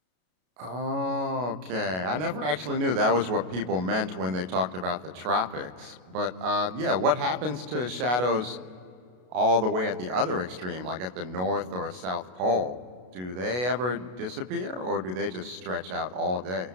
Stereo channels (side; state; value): left; late; 33 ms